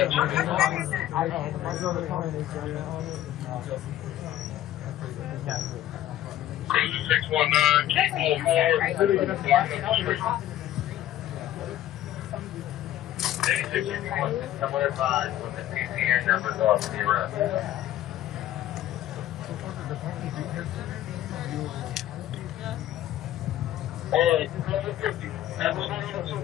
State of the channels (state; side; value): quieter; right; 13.1 dB